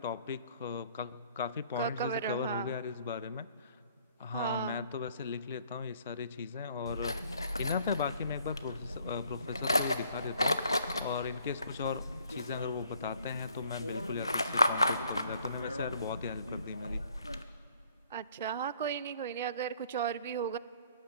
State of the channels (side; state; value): both; inverted; correlation -0.62